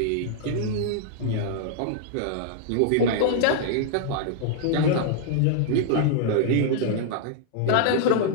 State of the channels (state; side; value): different; both; correlation -0.01